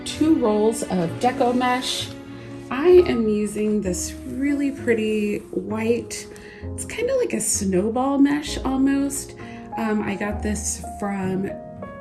2 rolls of deco mesh. I am using this really pretty white, it's kind of like a snowball mesh almost. I got this from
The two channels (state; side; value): identical; both; correlation 1.00